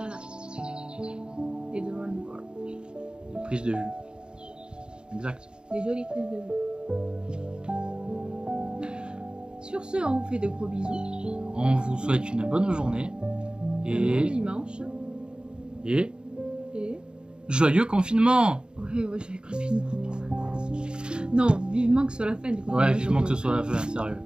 Des drones vol. des prises de vue. Exact. Des jolies prises de vue. Sur ce, on vous fait de gros bisous. On vous souhaite une bonne journée Un bon et dimanche. et Et. joyeux confinement. Ouais, j'ai confinement. Non, vivement que ce soit la fin du confinement. Ouais, vivement que ce soit la fin, sérieux.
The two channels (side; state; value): left; late; 0.050 ms